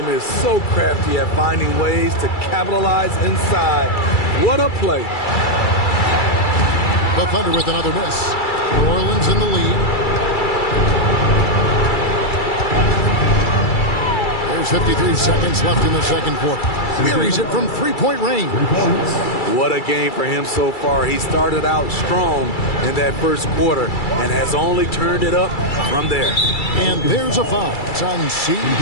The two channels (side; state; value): right; late; 2.3 ms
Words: is so crafty at finding ways to capitalize inside. What a play. The Thunder with another miss. New Orleans in the lead. There's 53 seconds left in the second quarter. Buries it from three-point range. What a game for him so far. He started out strong in that first quarter and has only turned it up from there. And there's a foul. It's on